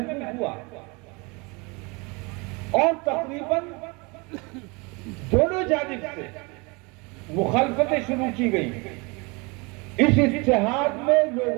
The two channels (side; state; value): left; quieter; 28.4 dB